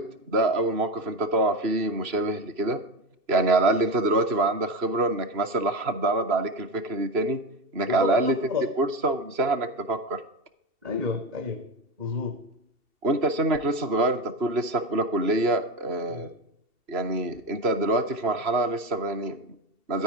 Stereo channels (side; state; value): left; late; 2.7 ms